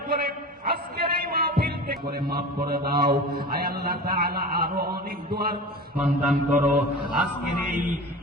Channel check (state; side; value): normal; both; correlation 0.34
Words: করে আজকের এই মাহফিল করে মাফ করে দাও। আয় আল্লাহ তাআলা আরো অনেক দোয়ার সন্ধান করো আজকের এই